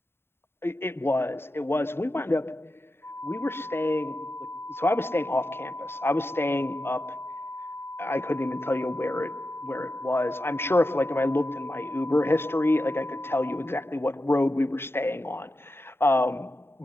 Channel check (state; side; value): late; right; 0.11 ms